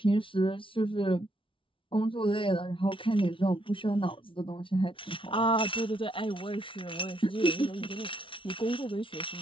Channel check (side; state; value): right; late; 0.25 ms